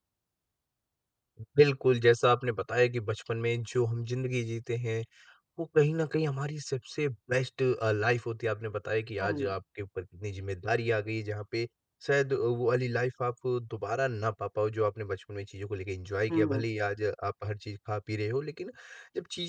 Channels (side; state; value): both; identical; correlation 1.00